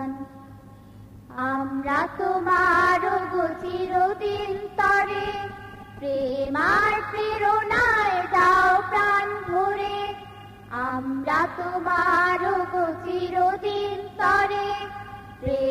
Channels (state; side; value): identical; both; correlation 1.00